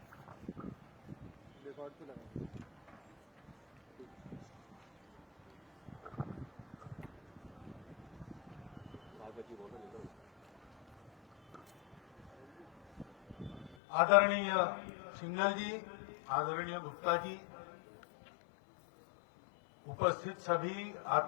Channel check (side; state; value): right; drops out; at 13.8 s